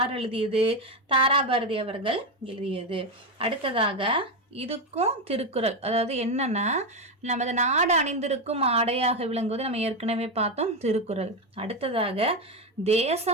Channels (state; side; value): normal; both; correlation 0.10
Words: எழுதியது, தாராபாரதி அவர்கள் எழுதியது. அடுத்ததாக இதுக்கும் திருக்குறள், அதாவது என்னன்னா, நமது நாடு அணிந்திருக்கும் ஆடையாக விளங்குவது நம்ம ஏற்கனவே பார்த்தோம், திருக்குறள். அடுத்ததாக